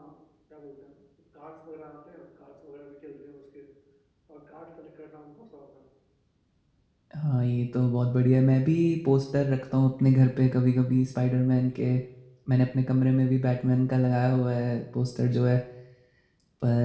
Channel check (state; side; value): identical; both; correlation 1.00